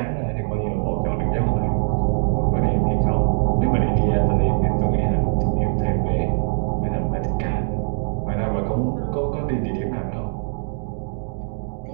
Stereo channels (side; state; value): left; silent; 64 dB below the other